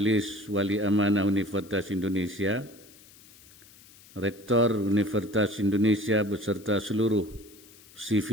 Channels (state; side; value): noise; left; hiss, 24 dB below the sound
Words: Wali Amanah Universitas Indonesia, Rektor Universitas Indonesia beserta seluruh